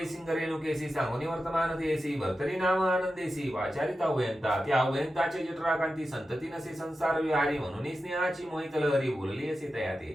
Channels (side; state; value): both; normal; correlation 0.91